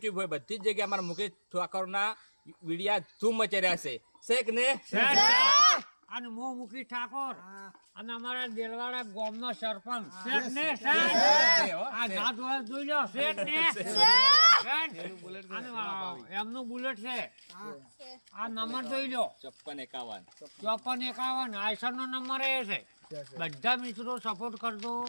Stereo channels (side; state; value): both; inverted; correlation -1.00